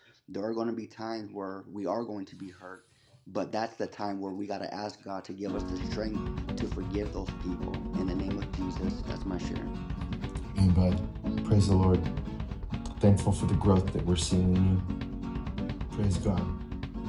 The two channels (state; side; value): identical; both; correlation 1.00